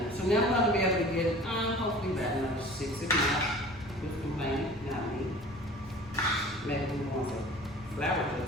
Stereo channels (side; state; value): both; normal; correlation 0.43